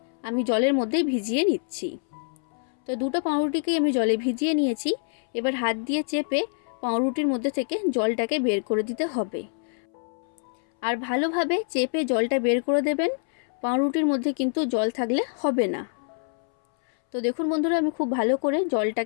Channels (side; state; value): right; silent; 61 dB below the other